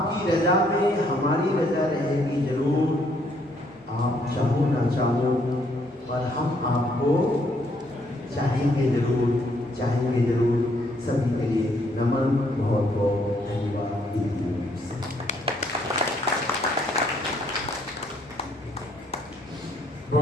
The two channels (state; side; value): normal; both; correlation 0.69